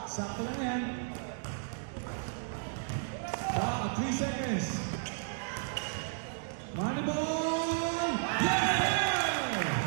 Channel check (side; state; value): left; silent; 56 dB below the other